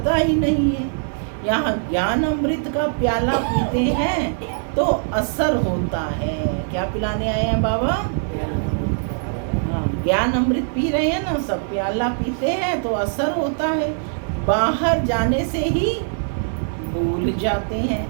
ही नहीं है। यहाँ ज्ञान अमृत का प्याला पीते हैं तो असर होता है। क्या पिलाने आए हैं बाबा? हाँ, ज्ञान अमृत पी रहे हैं ना, सब प्याला पीते हैं तो असर होता है, बाहर जाने से ही भूल जाते हैं।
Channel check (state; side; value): silent; left; digital silence